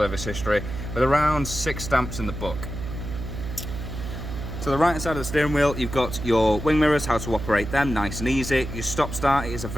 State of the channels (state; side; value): noise; right; hum, 7 dB below the sound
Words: history, with around 6 stamps in the book. To the right hand side of the steering wheel, you've got your wing mirrors, how to operate them, nice and easy. Your stop start is a